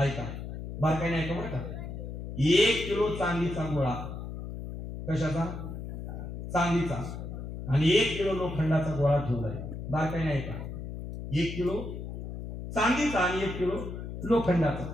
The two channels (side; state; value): left; noise; hum, 8 dB below the sound